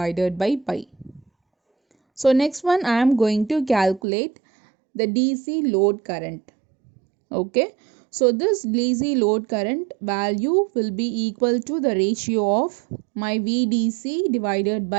by pi. So next one I am going to calculate the DC load current. Okay, so this DC load current value will be equal to the ratio of my VDC divided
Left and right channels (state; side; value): drops out; left; at 4.0 s